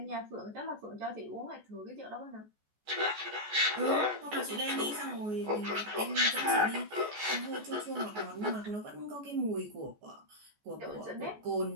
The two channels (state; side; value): late; left; 14 ms